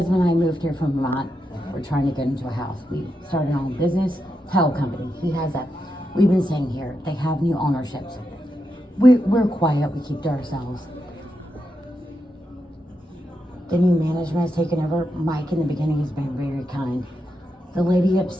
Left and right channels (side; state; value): both; normal; correlation 0.85